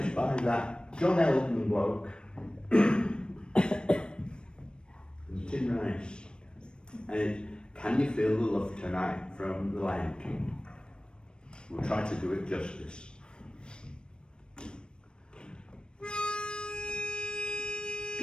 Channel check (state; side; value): late; right; 0.053 ms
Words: by that John Elton bloke, Tim Rice. And it's Can You Feel the Love Tonight from The Lion King. We'll try to do it justice.